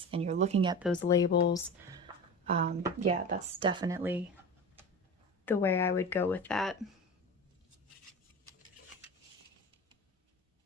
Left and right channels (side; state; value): both; normal; correlation 0.30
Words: and you're looking at those labels, yeah, that's definitely the way I would go with that.